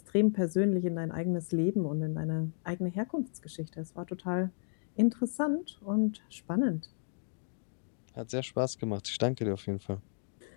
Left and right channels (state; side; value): silent; right; digital silence